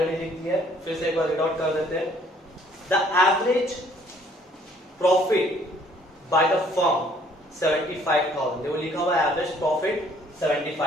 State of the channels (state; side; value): normal; both; correlation 0.61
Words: लिख दिया है, फिर से एक बार रीड आउट कर देते हैं। The average profit by the firm 75,000। देखो लिखा हुआ है average profit